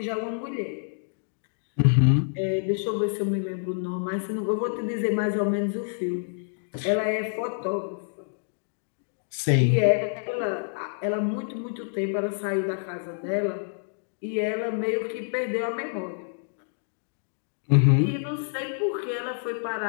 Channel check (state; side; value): silent; right; digital silence